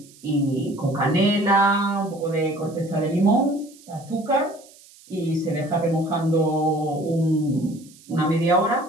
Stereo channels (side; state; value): right; noise; hiss, 25 dB below the sound